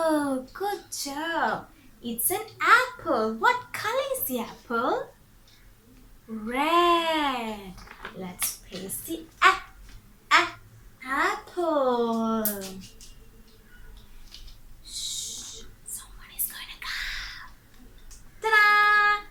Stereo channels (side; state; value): both; identical; correlation 1.00